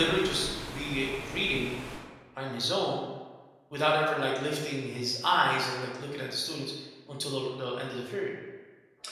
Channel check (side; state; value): both; identical; correlation 1.00